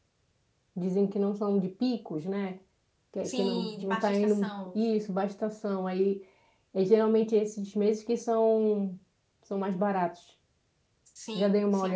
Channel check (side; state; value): both; identical; correlation 1.00